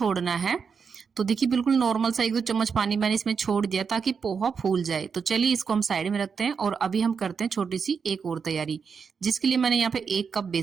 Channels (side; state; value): left; quieter; 6.0 dB